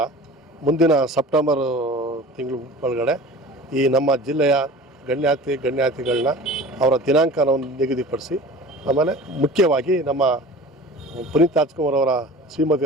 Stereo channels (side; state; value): both; normal; correlation 0.40